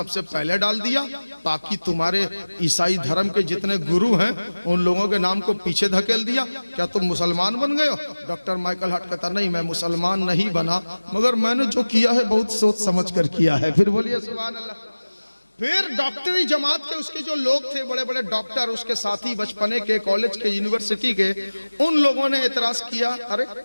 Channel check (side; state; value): both; inverted; correlation -1.00